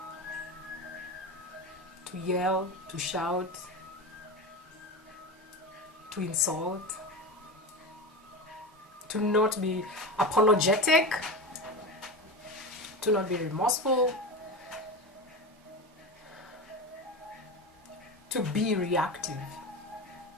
to yell, to shout, to insult, to not be apologetic, to not be remorseful, to be reactive.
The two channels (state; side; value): normal; both; correlation 0.24